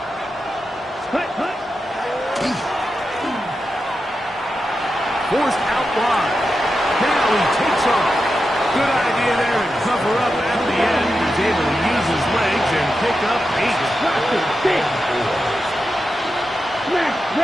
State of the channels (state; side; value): normal; both; correlation 0.89